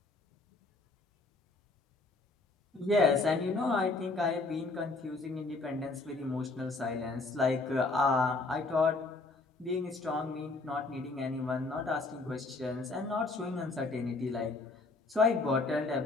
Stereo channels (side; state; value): right; quieter; 3.5 dB